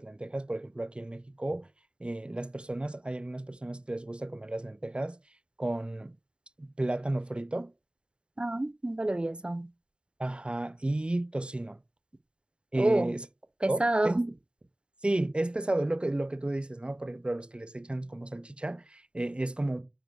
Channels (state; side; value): late; left; 0.052 ms